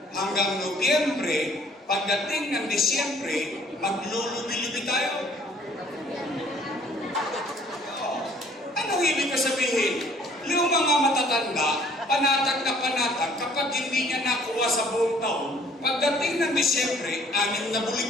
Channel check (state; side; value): normal; both; correlation 0.58